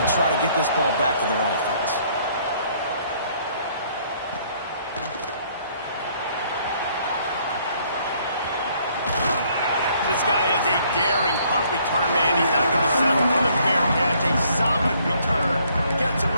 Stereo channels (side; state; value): both; inverted; correlation -0.64